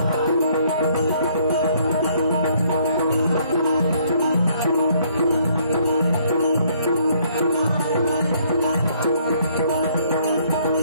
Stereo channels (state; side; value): inverted; both; correlation -0.65